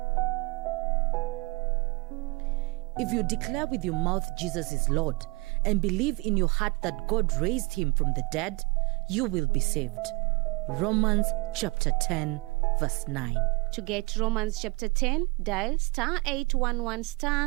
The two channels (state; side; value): quieter; left; 25.8 dB